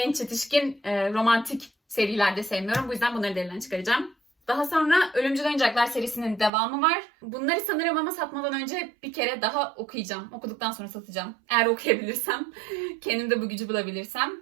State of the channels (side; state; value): left; drops out; at 6.5 s